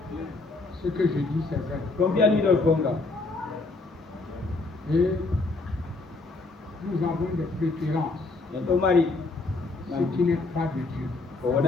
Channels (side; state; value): right; quieter; 3.5 dB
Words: Ce que je dis, c'est vrai. Et nous avons des préférences. Ce qui n'est pas de Dieu.